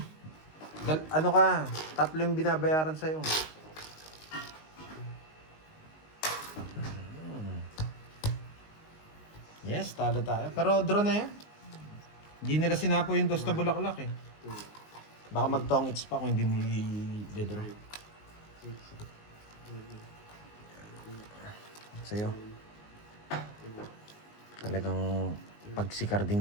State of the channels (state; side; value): late; right; 19 ms